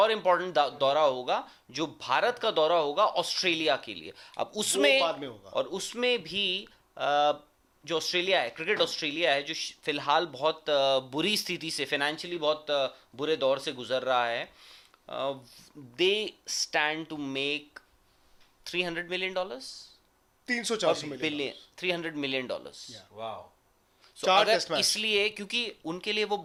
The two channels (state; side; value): identical; both; correlation 1.00